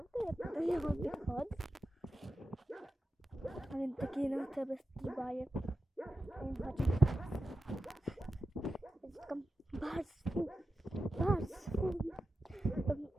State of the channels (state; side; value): normal; both; correlation 0.92